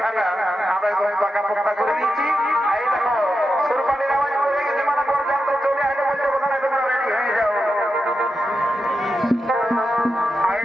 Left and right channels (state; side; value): normal; both; correlation 0.89